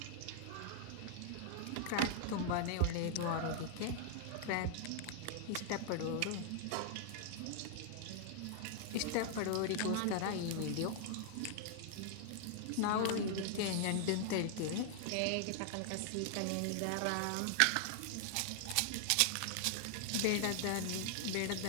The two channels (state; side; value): different; both; correlation -0.01